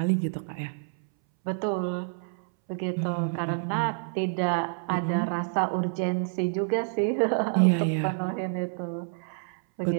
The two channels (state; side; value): silent; left; 59 dB below the other